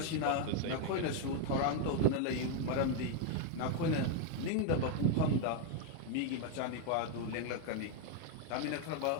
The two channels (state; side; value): different; both; correlation 0.01